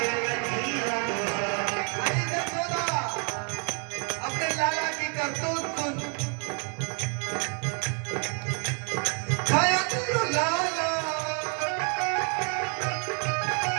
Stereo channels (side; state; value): left; quieter; 39.2 dB